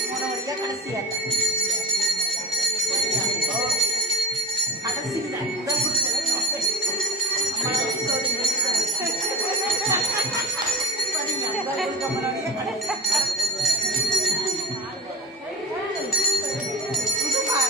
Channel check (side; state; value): both; normal; correlation 0.34